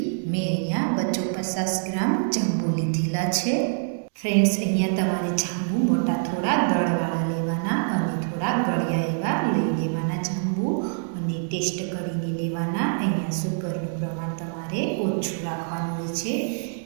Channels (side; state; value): left; silent; digital silence